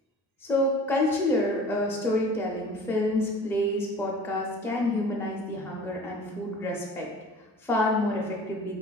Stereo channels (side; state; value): both; normal; correlation 0.44